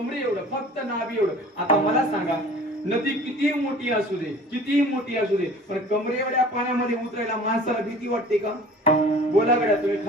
एवढं, फक्त नाभि एवढं. आता मला सांगा, नदी किती मोठी असू दे, किती मोठी असू दे, पण कमरे एवढ्या पाण्यामध्ये उतरायला माणसाला भीती वाटते का? बोला गड्या तुम्ही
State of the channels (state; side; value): normal; both; correlation 0.46